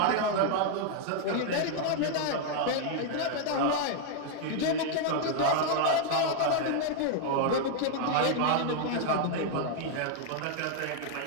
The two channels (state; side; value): different; both; correlation 0.00